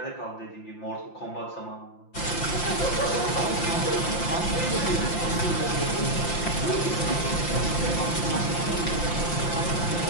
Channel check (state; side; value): late; right; 5.8 ms